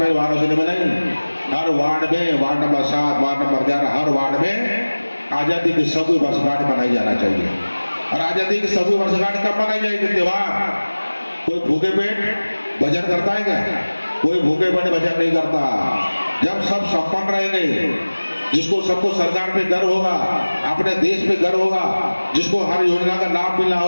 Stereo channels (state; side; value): inverted; both; correlation -1.00